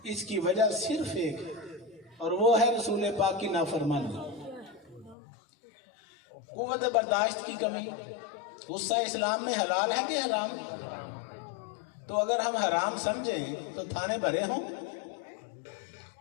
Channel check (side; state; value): right; drops out; at 5.2 s